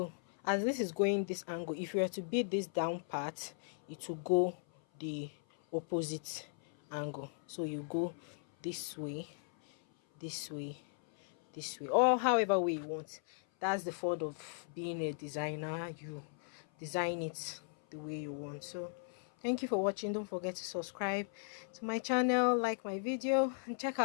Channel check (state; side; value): silent; right; 53 dB below the other